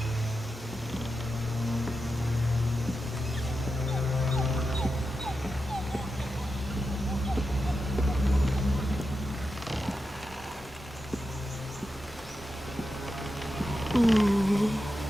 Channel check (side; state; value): both; normal; correlation 0.89